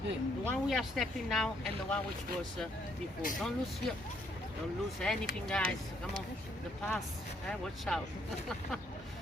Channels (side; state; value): both; normal; correlation 0.70